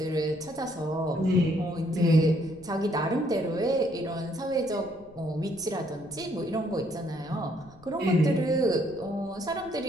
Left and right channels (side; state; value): left; noise; rumble, 23 dB below the sound